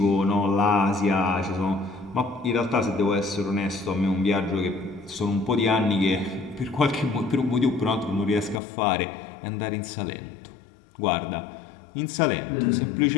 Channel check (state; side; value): drops out; right; at 8.6 s